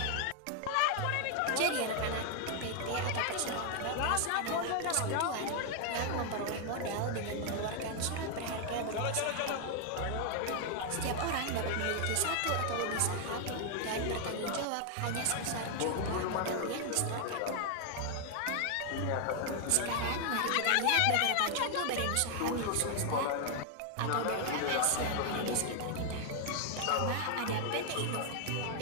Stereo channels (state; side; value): different; both; correlation 0.00